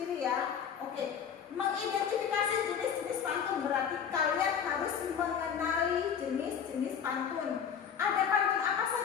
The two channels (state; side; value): quieter; right; 7.7 dB